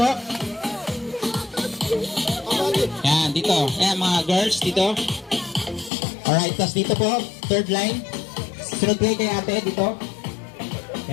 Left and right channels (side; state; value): right; drops out; at 5.9 s